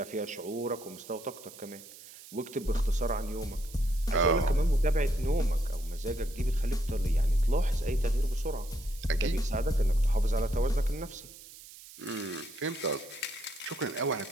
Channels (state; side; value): noise; right; hiss, 18 dB below the sound